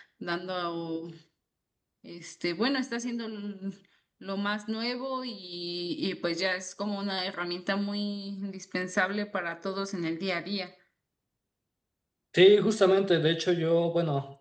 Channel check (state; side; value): identical; both; correlation 1.00